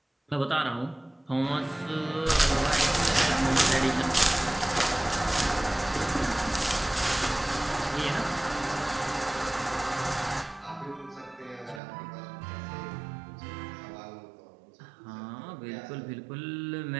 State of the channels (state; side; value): drops out; left; at 11.8 s